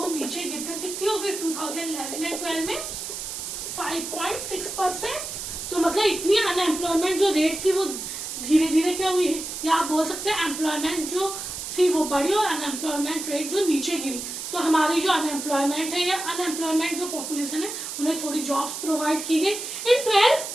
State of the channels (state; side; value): noise; right; hiss, 6 dB below the sound